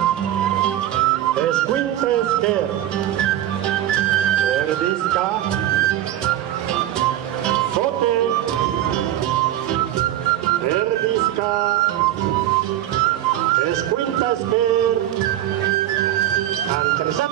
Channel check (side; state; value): left; quieter; 12.7 dB